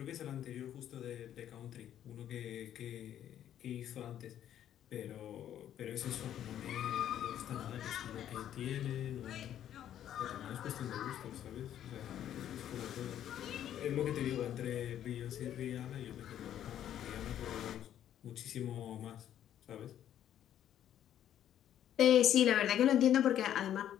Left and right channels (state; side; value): quieter; right; 10.8 dB